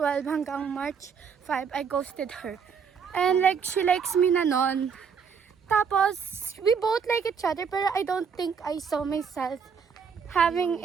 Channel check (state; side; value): quieter; left; 6.4 dB